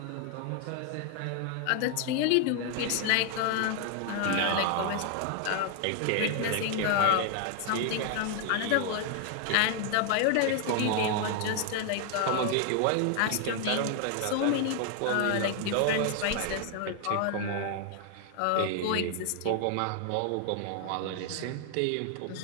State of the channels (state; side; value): different; both; correlation 0.00